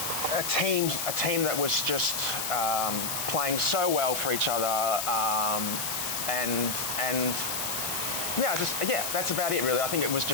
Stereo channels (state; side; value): noise; left; hiss, 2 dB below the sound